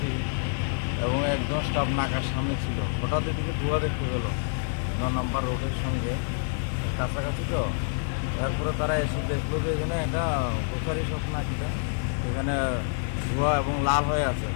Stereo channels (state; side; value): silent; right; digital silence